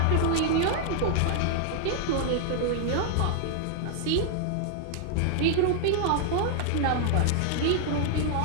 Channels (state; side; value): different; both; correlation -0.01